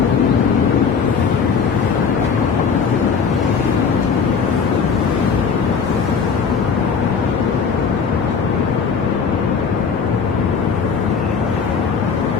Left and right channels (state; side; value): quieter; right; 6.0 dB